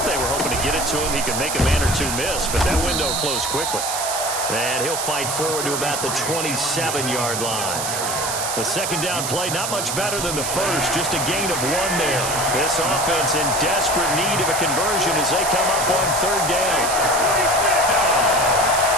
they were hoping to get it to him. He could make a man or 2 miss, but that window closed quickly. And he'll fight forward to about the 27-yard line. The second down play, not much better than the first, just a gain of 1 there. This offense in desperate need of a conversion as they come up on third down.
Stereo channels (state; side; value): noise; right; hiss, 3 dB below the sound